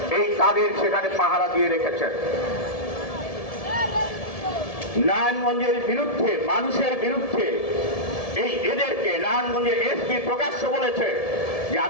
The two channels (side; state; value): right; late; 1.7 ms